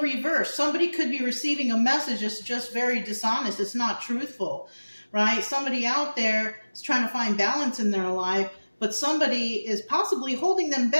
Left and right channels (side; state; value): both; inverted; correlation -1.00